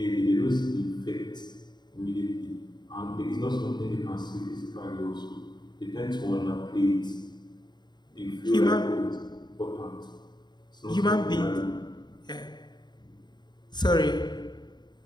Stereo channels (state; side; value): late; right; 0.21 ms